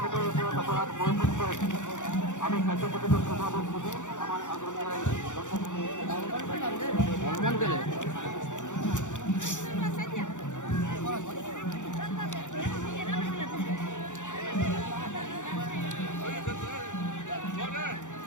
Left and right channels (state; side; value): late; right; 0.85 ms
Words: উপর অপরাধ মনোযোগ করেছি। আমি কার্যকরিত প্রভাবক বুঝি আমার আন্দোলনের